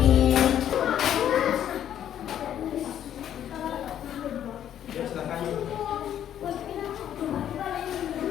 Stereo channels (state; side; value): quieter; right; 10.4 dB